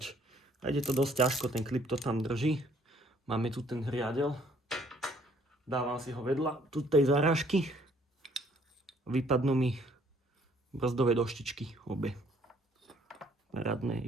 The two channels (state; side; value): normal; both; correlation 0.62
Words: A ide to dosť ťažko, ten klip to tam drží. Máme tu ten riadel. Dávam si ho vedľa tu tej zarážky. Vypadnú mi brzdové doštičky obe. Parádne.